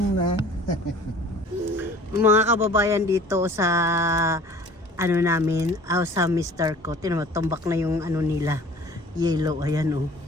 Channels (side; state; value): both; normal; correlation 0.48